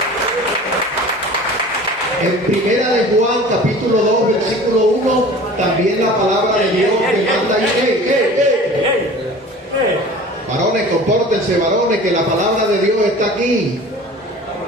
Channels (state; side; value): normal; both; correlation 0.42